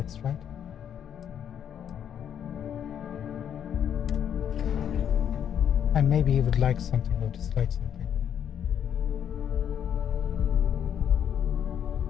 right? And maybe he would like something of dislike something.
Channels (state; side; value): quieter; right; 9.0 dB